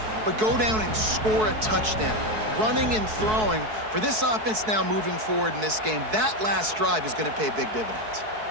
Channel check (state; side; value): late; left; 4.6 ms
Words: but go down and score a touchdown. Running and throwing, for this offense now moving forward in this game, that last drive is going to pay big dividends.